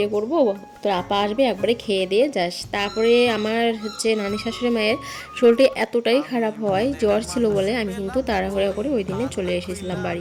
করবো, তোর আপা আসবে, একবারে খেয়ে দিয়ে যাস। তারপরে আমার নানি শাশুড়ি মায়ের শরীরটা এতটাই খারাপ হয়, জ্বর ছিল বলে আমি কিন্তু তাড়াহুড়ো করে ওই দিনে চলে এসেছিলাম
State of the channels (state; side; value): identical; both; correlation 1.00